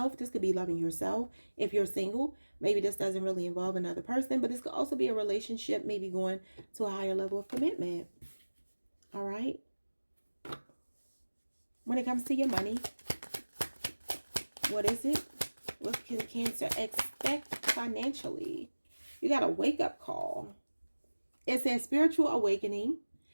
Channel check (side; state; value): both; inverted; correlation -1.00